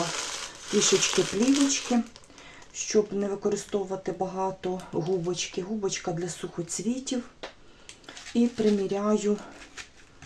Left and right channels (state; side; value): identical; both; correlation 1.00